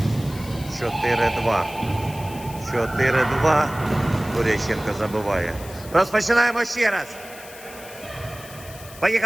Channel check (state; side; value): noise; left; hiss, 17 dB below the sound